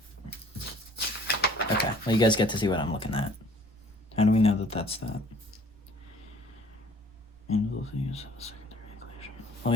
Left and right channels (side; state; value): right; noise; rumble, 29 dB below the sound